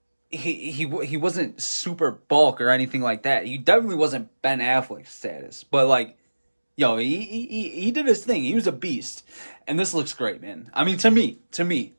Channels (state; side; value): inverted; both; correlation -1.00